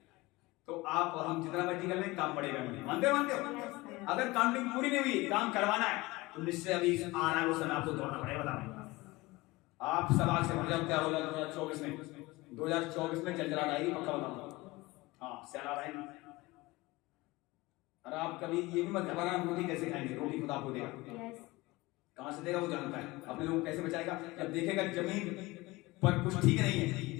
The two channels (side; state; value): right; quieter; 21.2 dB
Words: तो आप और हम जितना मर्जी कर लें काम पड़ेगा नहीं। मानते हो? अगर काउंटिंग पूरी नहीं हुई, काम करवाना है तो निश्चय अभी आ रहा है वो समय आपको दौड़ना पड़ेगा। बताना आप सवाल से भर जाओ, क्या होगा 2024 में, 2024 में चलचलाहट आएगी, पक्का बताऊंगा। हाँ, सैलाब आएगी। और आप कभी ये भी मत घबराना, रोटी कैसे खाएंगे, रोटी खुदा आपको देगा, कहां से देगा वो जानता है, अपने लोग कैसे बचाएगा। जब देखेगा जमीन पर कुछ ठीक नहीं